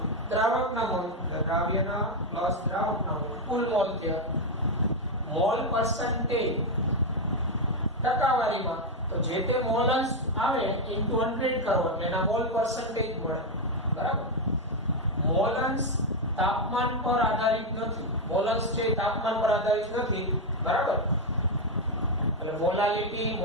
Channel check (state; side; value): normal; both; correlation 0.04